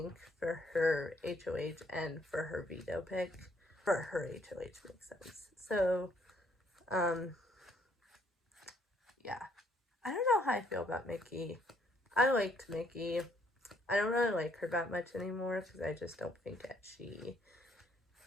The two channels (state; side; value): normal; both; correlation 0.68